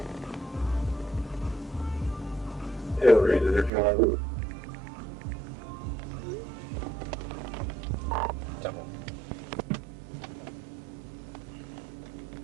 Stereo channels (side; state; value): left; drops out; at 3.7 s